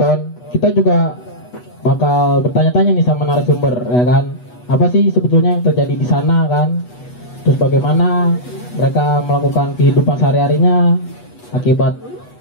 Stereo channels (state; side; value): late; right; 8.2 ms